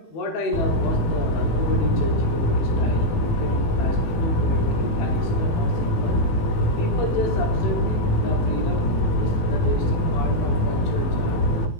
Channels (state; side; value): late; right; 18 ms